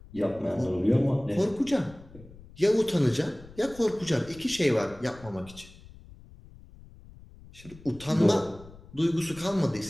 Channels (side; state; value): left; noise; rumble, 20 dB below the sound